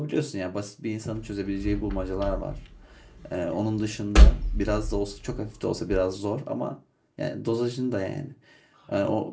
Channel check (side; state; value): both; identical; correlation 1.00